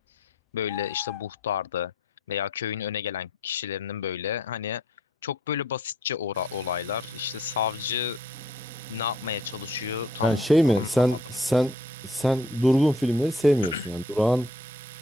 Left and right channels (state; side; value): normal; both; correlation 0.62